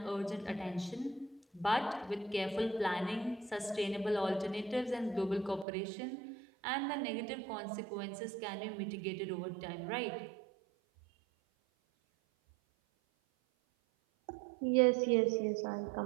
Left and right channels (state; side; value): drops out; left; at 5.7 s